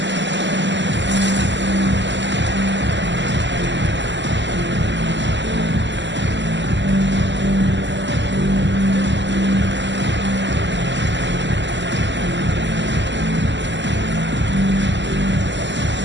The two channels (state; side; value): late; left; 0.53 ms